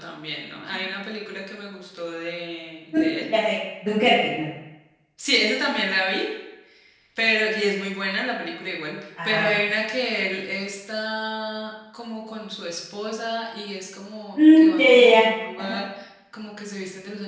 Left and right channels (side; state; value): both; identical; correlation 1.00